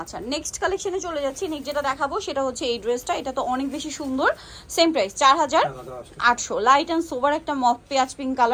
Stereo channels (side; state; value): both; identical; correlation 1.00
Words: নেক্সট কালেকশনে চলে যাচ্ছি। নেক্সট যেটা দেখাবো সেটা হচ্ছে এই ড্রেসটা, এটা তো অনেক বেশি সুন্দর, সেম প্রাইস 4800। লাইট অ্যান্ড সোবার একটা মফ পেঁয়াজ পিঙ্ক